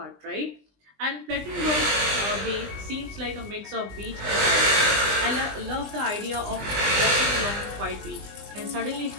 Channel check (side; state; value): left; late; 20 ms